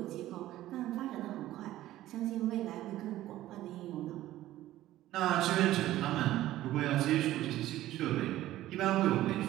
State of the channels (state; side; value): quieter; left; 14.7 dB